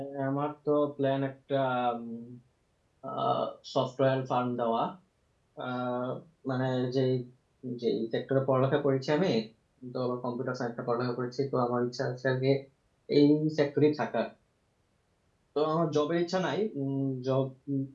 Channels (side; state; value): both; identical; correlation 1.00